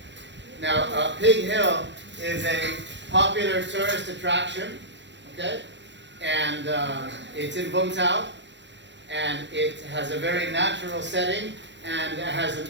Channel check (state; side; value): late; left; 0.52 ms